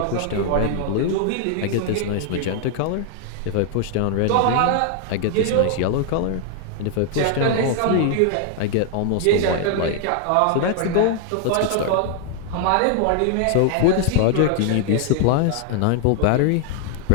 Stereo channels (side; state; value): both; different; correlation 0.00